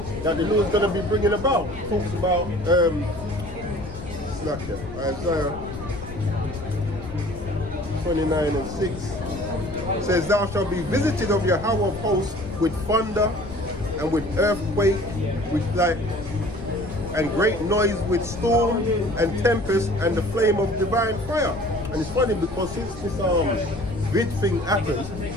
that the Lord's going to be bringing about. It talks about, Isaiah 29 and 6. It says, thou shalt be visited of Yahweh of hosts with thunder and with earthquake, with light, and great noise with storm and tempest and the flame of divine fire. And it's funny because since this vid thing happened,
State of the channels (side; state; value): left; noise; rumble, 13 dB below the sound